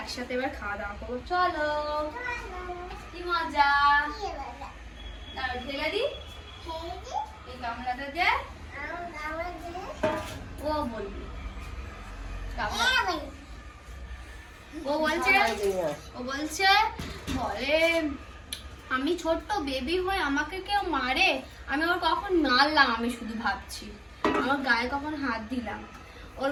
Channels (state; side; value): identical; both; correlation 1.00